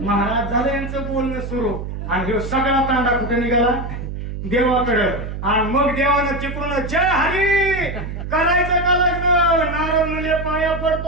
झालं यांचं बोलणं सुरू. आणि ह्यो सगळा तांडा कुठे निघाला देवाकडं. आणि मग देवानं चिपळून जय हरी करायचं का लग्न. नारद मुले पाया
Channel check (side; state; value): right; noise; hum, 7 dB below the sound